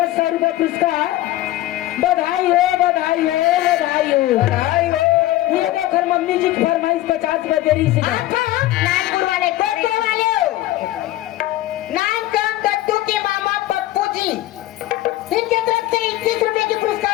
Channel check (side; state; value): right; quieter; 15.8 dB